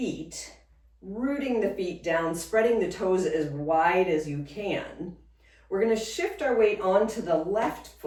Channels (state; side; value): identical; both; correlation 1.00